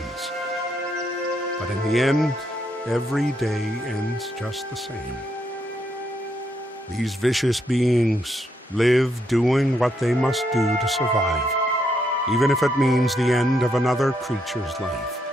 but in the end, every day ends just the same. These vicious beings live doing what they must do to survive, even if it means the end of another creature's life.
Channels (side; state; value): both; normal; correlation 0.77